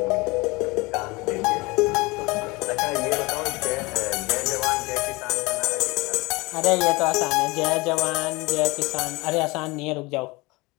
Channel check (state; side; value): quieter; right; 24.1 dB